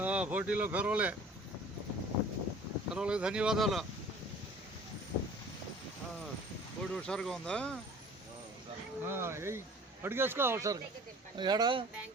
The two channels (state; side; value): normal; both; correlation 0.47